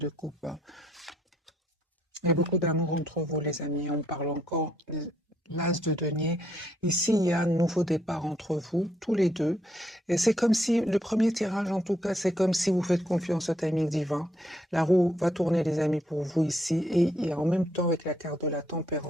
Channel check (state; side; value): normal; both; correlation 0.72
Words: coupe. Hein. Il y a beaucoup d'amour entre vous, les amis. On parle encore l'as de denier. Ici, il y a un nouveau départ entre vous, tous les deux. Et c'est comme si, le premier tirage, en tout cas, c'est comme si vous faites confiance au timing divin. La roue va tourner, les amis, pour vous ici. Et en même temps, avec la carte de la